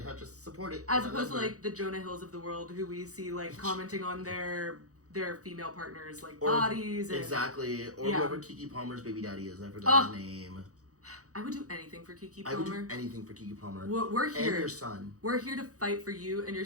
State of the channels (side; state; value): left; late; 0.66 ms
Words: to support it. As opposed to like the Jonah Hills of the world, who we see like commenting on their female partners like bodies. And, exactly. Or whoever Kiki Palmer's baby daddy is. I forgot his name. I would do anything for Kiki Palmer. I would do anything for Kiki Palmer. We're here. And your son. We're here to fight for you and